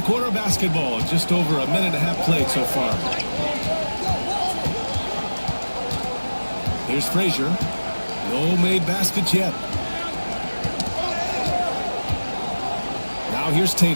quarter of basketball, just over a minute and a half played so far. Here's Frazier. No made baskets yet. Now here's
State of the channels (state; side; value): inverted; both; correlation -1.00